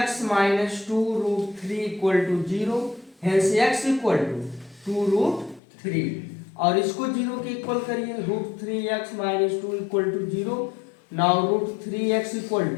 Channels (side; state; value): right; drops out; at 5.6 s